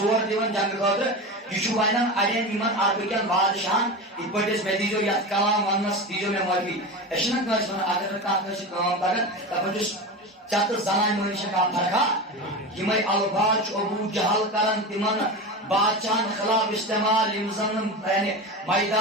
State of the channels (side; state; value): both; normal; correlation 0.24